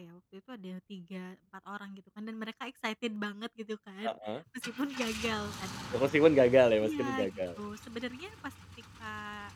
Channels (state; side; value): identical; both; correlation 1.00